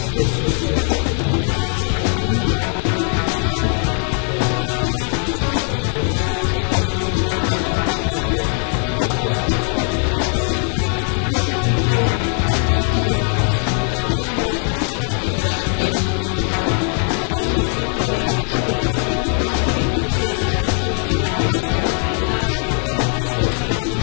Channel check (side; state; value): right; quieter; 39.3 dB